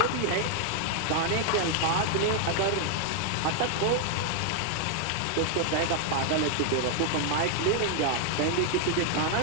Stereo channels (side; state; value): both; different; correlation 0.00